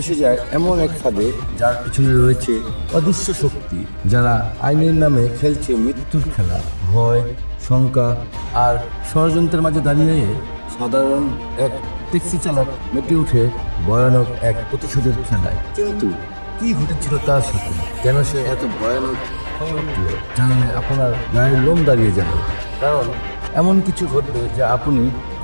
যায় এমন এক ফাঁদে যার পিছনে রয়েছে অদৃশ্য শক্তি, যারা আইনের নামে খেলছে মৃত্যুর খেলা। ভয়, শঙ্কা আর ষড়যন্ত্রের মাঝে দাঁড়িয়ে সাধারণ এক ট্যাক্সি চালক মেতে উঠে ভয়ানক এক প্রতিশোধের খেলায়। কিন্তু কি ঘটেছিল তার সাথে, কেন সে এত ভয়ানক হয়ে উঠল, জানলে আপনার গায়ের লোম দাঁড়িয়ে যাবে। কারণ এমন কিছু ঘটবে যা আপনি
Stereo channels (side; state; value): both; inverted; correlation -1.00